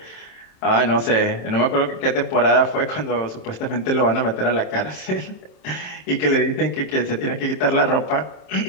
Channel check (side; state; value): right; late; 27 ms